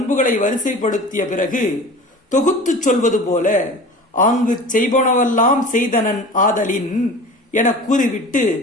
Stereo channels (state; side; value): normal; both; correlation 0.38